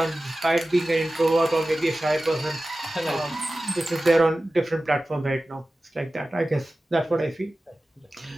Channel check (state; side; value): normal; both; correlation 0.95